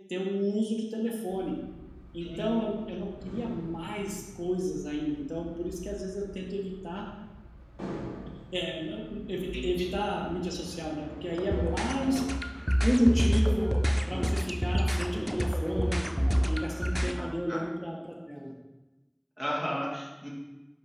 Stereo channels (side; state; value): both; identical; correlation 1.00